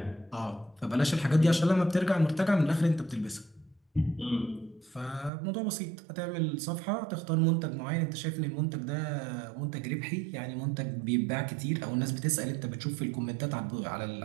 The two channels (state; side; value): drops out; left; at 5.3 s